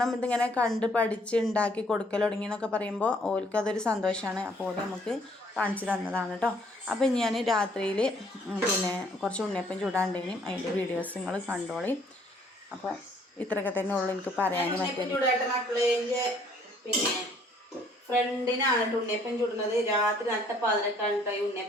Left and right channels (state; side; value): normal; both; correlation 0.62